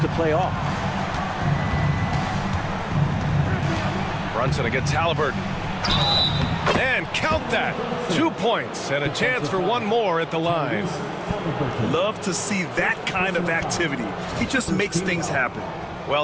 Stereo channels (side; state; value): both; identical; correlation 1.00